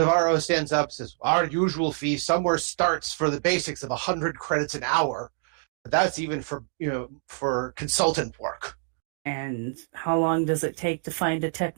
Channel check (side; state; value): left; silent; digital silence